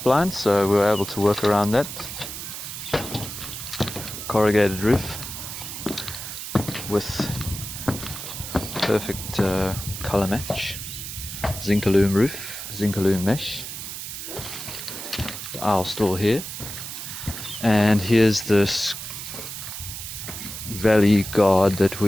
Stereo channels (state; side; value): noise; right; hiss, 8 dB below the sound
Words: so we were able to work around that. Corrugated roof with perfect color match, Zinc-alume roof, Zinc-alume mesh. The aisle store here, and here's this valley guard that